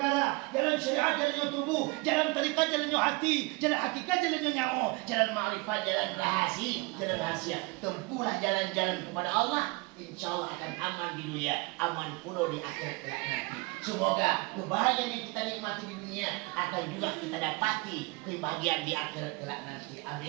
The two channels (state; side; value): quieter; left; 26.4 dB